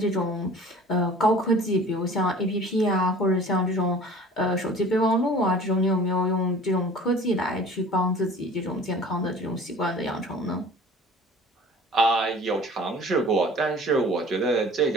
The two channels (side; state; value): both; normal; correlation 0.45